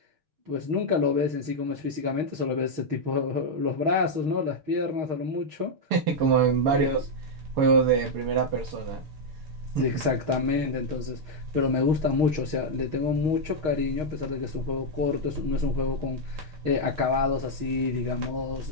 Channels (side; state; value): left; late; 6.4 ms